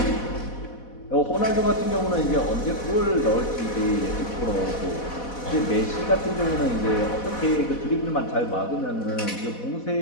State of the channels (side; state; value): right; late; 4.1 ms